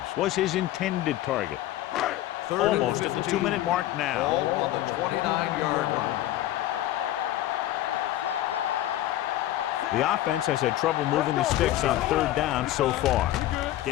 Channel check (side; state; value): right; quieter; 14.2 dB